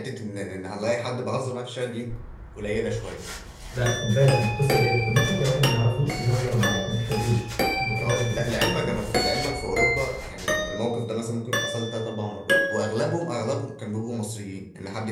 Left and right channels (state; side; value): identical; both; correlation 1.00